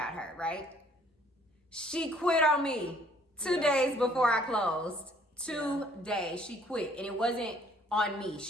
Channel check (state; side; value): normal; both; correlation 0.60